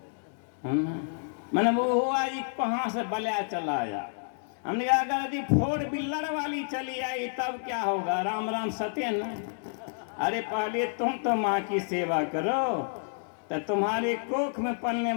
मैंने वो हुआ जी कहाँ से बलिया चला आया। हमने कहा अगर यदि 4 व्हीलर वाली चली आई तब क्या होगा? राम राम सत्यन। अरे पहले तुम तो माँ की सेवा करो, तो तुम्हारे कोख में पलने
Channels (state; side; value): silent; right; digital silence